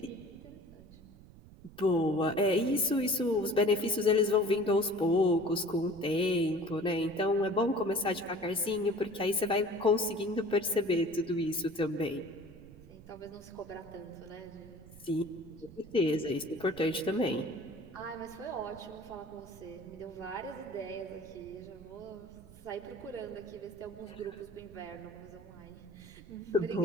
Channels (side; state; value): right; noise; rumble, 20 dB below the sound